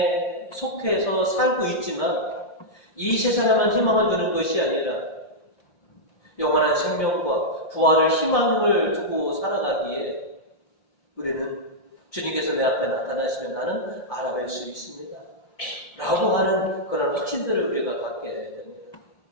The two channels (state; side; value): late; right; 5.7 ms